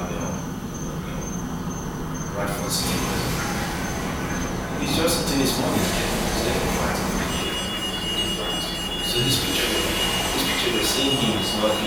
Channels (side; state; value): both; identical; correlation 1.00